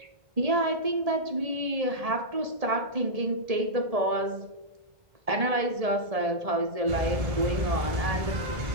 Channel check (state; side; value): late; left; 1.7 ms